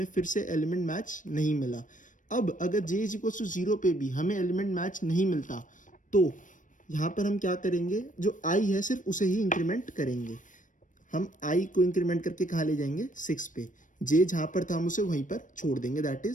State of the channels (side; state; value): right; late; 0.37 ms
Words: फिर से एलिमेंट मैच नहीं मिला. अब अगर j is equals to 0 पे भी हमें एलिमेंट मैच नहीं मिलता तो यहाँ पर हम क्या करेंगे, जो i है सिर्फ उसे ही इंक्रीमेंट करेंगे. हम i को इंक्रीमेंट करके कहाँ ले जाएंगे, 6 पे. j जहाँ पर था हम उसे वहीं पर छोड़ देंगे, दैट